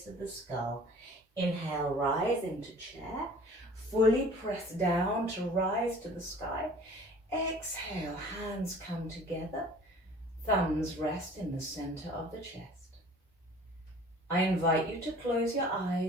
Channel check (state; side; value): normal; both; correlation 0.48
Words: of the skull. Inhale, rise into chair, fully press down to rise to the sky. Exhale, hands come together, thumbs rest in the center of the chest. I invite you to close your